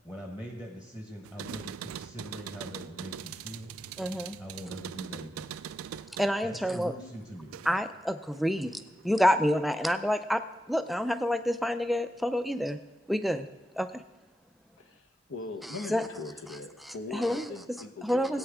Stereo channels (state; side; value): normal; both; correlation 0.87